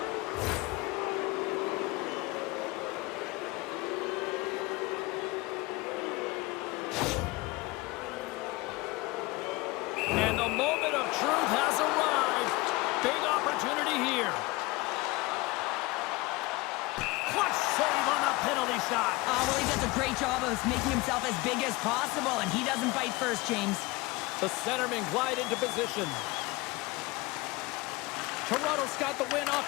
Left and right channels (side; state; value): right; quieter; 22.7 dB